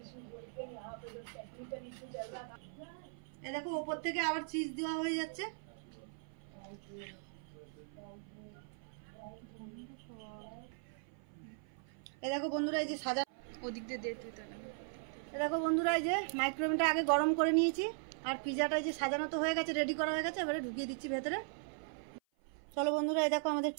এই দেখো ওপর থেকে আবার চিজ দেওয়া হয়ে যাচ্ছে। এই দেখো বন্ধুরা এই যে সাজা ওদিক দিয়ে এই দেখো বন্ধুরা এই যে মাইক্রোওভেনটা আগে গরম করে নিয়েছি আর পিজাটা যে সাজানো তো হয়ে গেছে, রেডি করা হয়ে গেছে, এবারে ঢুকিয়ে দিচ্ছি ভেতরে। চলো বন্ধুরা এই দেখো আমাদের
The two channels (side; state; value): left; silent; 52 dB below the other